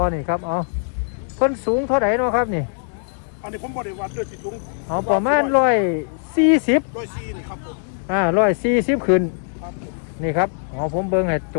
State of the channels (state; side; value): silent; right; digital silence